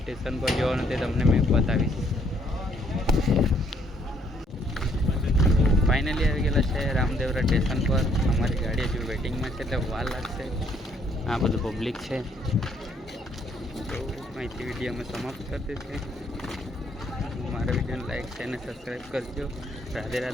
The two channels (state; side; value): normal; both; correlation 0.68